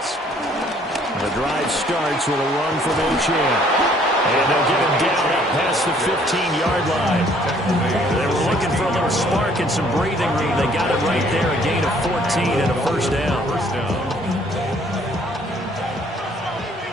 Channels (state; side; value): normal; both; correlation 0.61